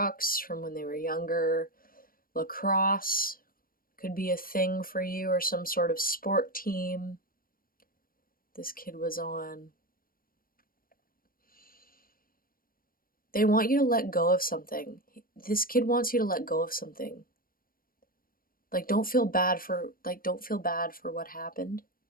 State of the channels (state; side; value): late; right; 0.42 ms